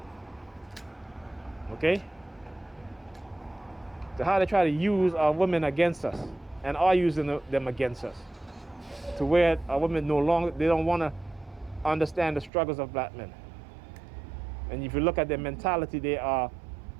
Okay? To how they try to use our women against us, and are using them against us, to where our women they don't want to understand the struggles of black men. And if you look at their mentality, they are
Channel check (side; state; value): left; drops out; at 12.5 s